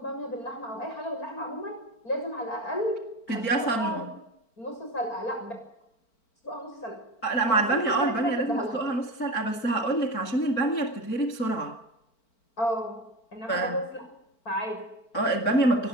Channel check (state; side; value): late; right; 4.5 ms